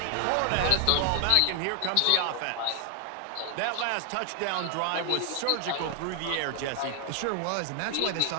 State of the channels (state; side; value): different; both; correlation 0.00